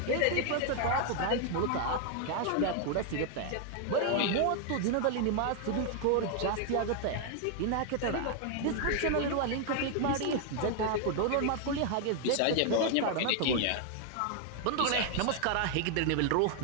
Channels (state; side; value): different; both; correlation 0.00